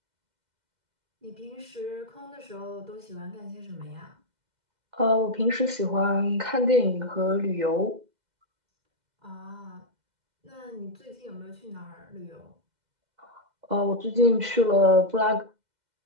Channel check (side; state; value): left; late; 2.0 ms